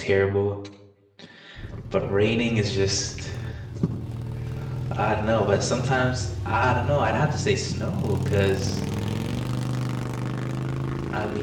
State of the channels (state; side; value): identical; both; correlation 1.00